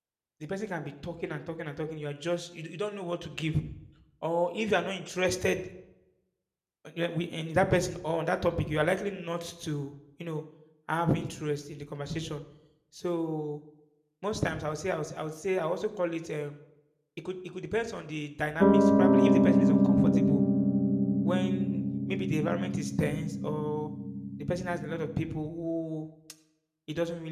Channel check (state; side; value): identical; both; correlation 1.00